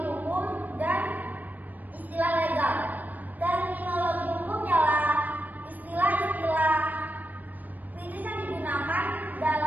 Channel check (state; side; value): late; left; 0.082 ms